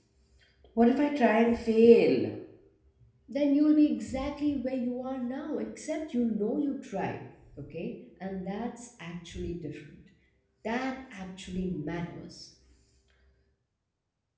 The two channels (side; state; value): both; identical; correlation 1.00